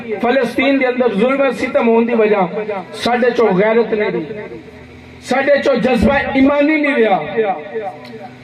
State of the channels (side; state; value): both; identical; correlation 1.00